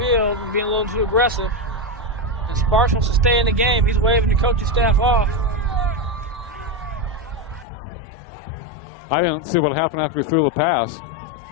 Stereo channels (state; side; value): drops out; right; at 7.7 s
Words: and being a little too aggressive. And Sparks wants to stay in the game. He's waving the coaching staff off. I didn't see what happened after he threw the pass.